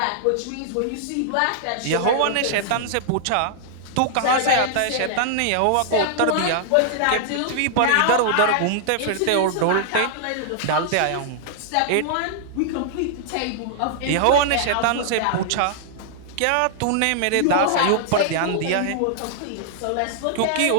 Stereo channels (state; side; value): different; both; correlation -0.01